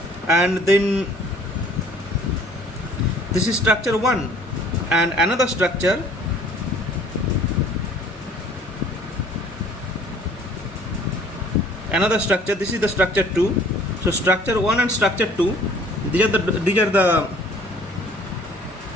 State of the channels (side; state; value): both; normal; correlation 0.54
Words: and then this is structure 1, and another structure another structure. This is the structure 2. So structure 1 and structure 2, these are the